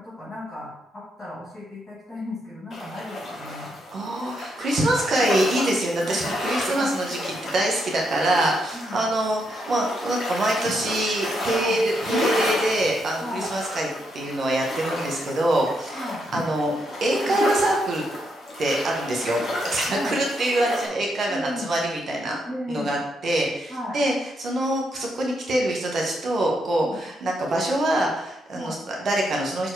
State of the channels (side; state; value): both; normal; correlation 0.79